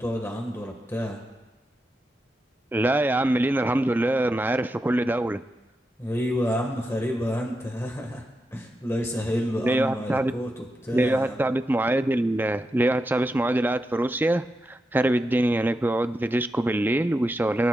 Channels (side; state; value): both; normal; correlation 0.87